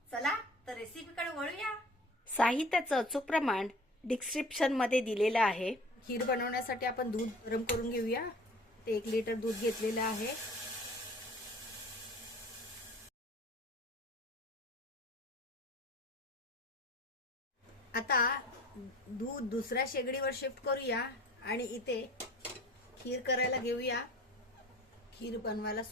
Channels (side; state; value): both; normal; correlation 0.45